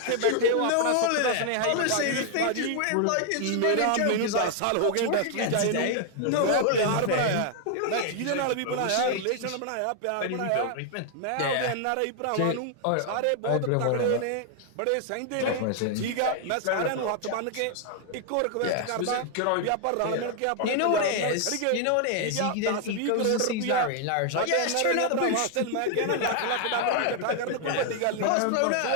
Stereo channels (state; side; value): different; both; correlation 0.00